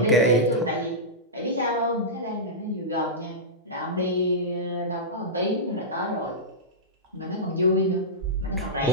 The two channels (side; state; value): both; normal; correlation -0.14